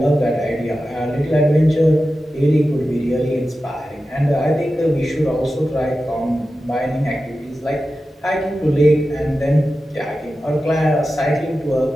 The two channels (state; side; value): normal; both; correlation 0.93